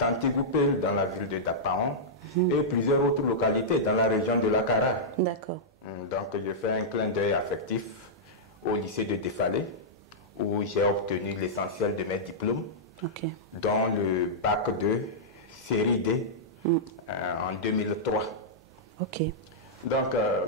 dans la ville de Dapaon et plusieurs autres localités dans la région de la Kara. D'accord. Donc je fais un clin d'œil affectif au lycée de Défalé où j'ai obtenu l'essentiel de mes diplômes, dont le bac de série D en 2003. Donc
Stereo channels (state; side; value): normal; both; correlation -0.10